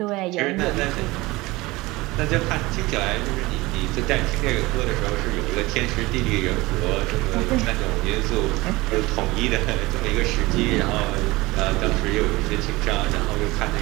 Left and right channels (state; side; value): quieter; left; 21.1 dB